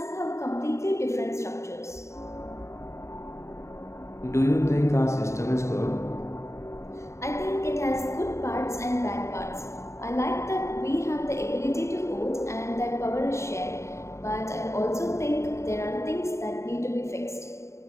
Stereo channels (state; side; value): late; right; 0.14 ms